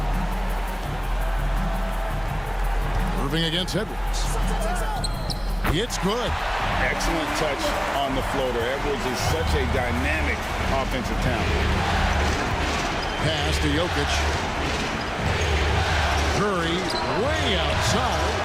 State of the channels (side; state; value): both; identical; correlation 1.00